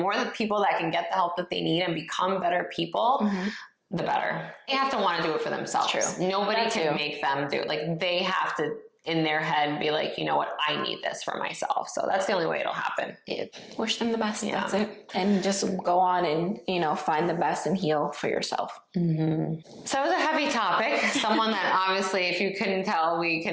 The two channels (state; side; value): identical; both; correlation 1.00